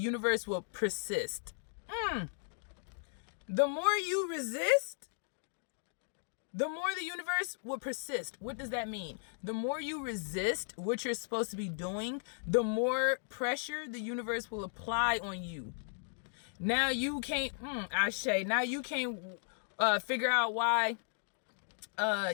will persist. The more you resist, the more the universe will persist. What does that mean? The more you resist what you're supposed to be doing, the more pressure the universe will apply on you. Now you can't, Ashe, now you can't figure out why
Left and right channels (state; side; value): silent; right; digital silence